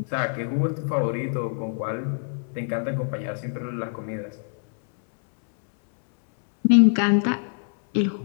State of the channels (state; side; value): silent; right; 62 dB below the other